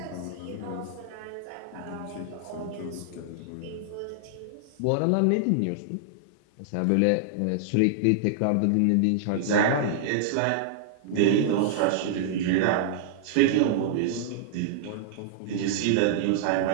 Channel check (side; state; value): both; different; correlation -0.01